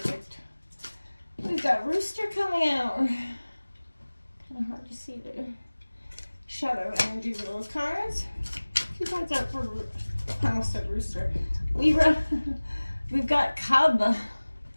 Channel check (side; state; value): both; inverted; correlation -1.00